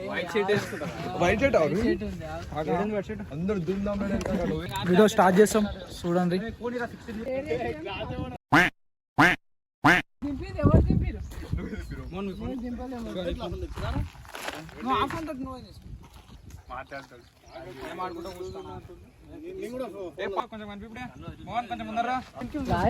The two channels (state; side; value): identical; both; correlation 1.00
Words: వీడియో స్టార్ట్ చేస్తాం, చూడండి. కొంచెం ముందరా